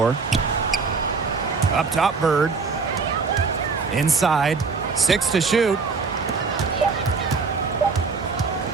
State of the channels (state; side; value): quieter; left; 4.8 dB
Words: Up top, Bird. Inside. 6 to shoot.